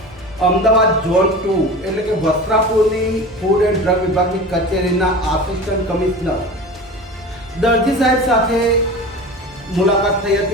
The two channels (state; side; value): normal; both; correlation 0.33